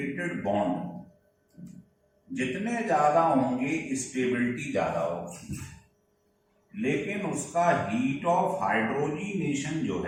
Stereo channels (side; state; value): both; identical; correlation 1.00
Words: bond जितने ज्यादा होंगे स्टेबिलिटी ज्यादा होगी, लेकिन उसका हीट ऑफ हाइड्रोजिनेशन जो